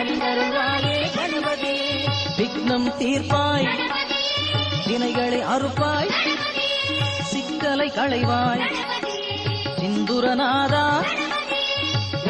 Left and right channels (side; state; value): both; identical; correlation 1.00